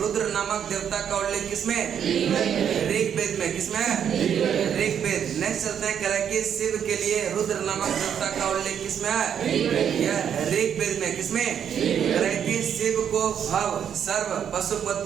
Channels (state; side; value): quieter; left; 8.5 dB